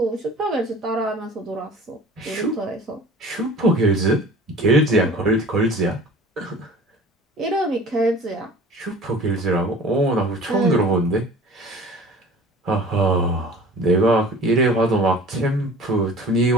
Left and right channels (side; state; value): both; normal; correlation 0.43